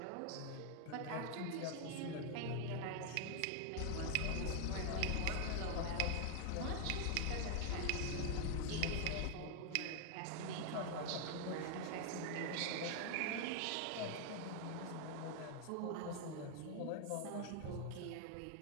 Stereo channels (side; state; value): both; different; correlation 0.00